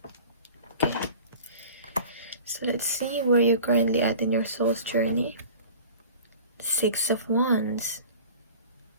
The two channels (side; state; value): both; inverted; correlation -0.43